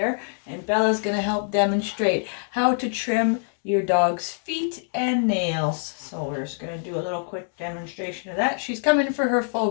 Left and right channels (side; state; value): right; silent; digital silence